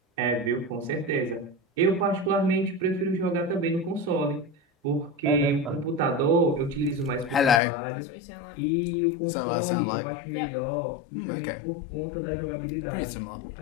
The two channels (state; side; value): drops out; right; at 7.6 s